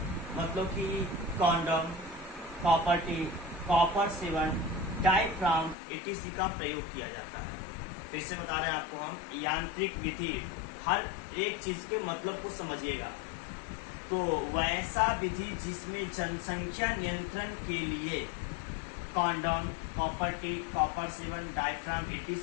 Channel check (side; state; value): right; drops out; at 5.8 s